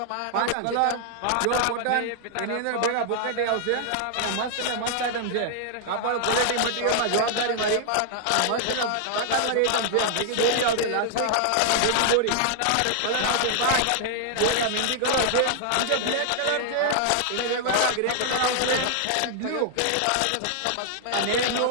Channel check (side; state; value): both; different; correlation -0.01